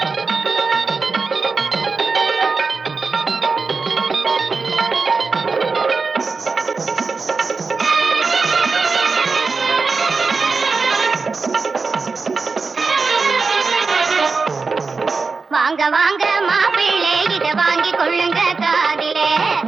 வாங்க வாங்க மாப்பிள்ளை இத வாங்கி கொள்ளுங்க காதிலே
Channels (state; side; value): quieter; left; 4.4 dB